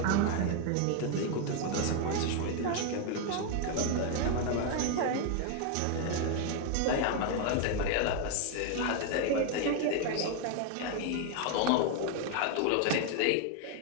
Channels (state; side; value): different; both; correlation 0.01